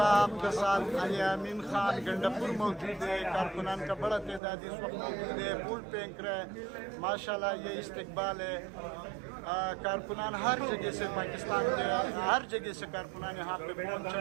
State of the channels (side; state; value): left; drops out; at 4.4 s